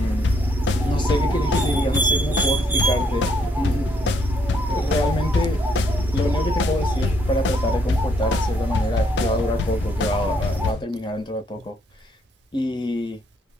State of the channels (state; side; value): normal; both; correlation 0.71